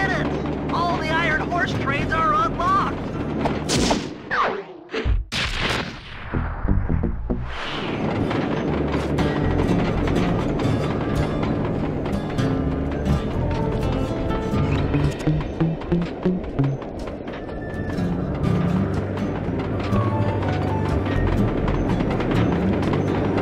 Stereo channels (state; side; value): identical; both; correlation 1.00